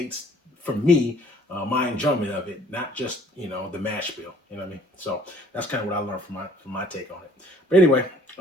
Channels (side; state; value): both; normal; correlation 0.57